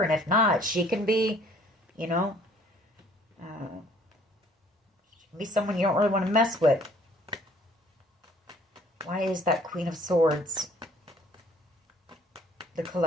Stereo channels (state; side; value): normal; both; correlation 0.57